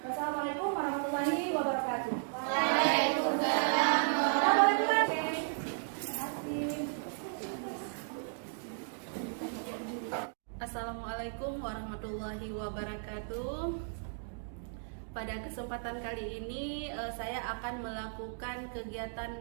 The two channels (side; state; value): left; silent; digital silence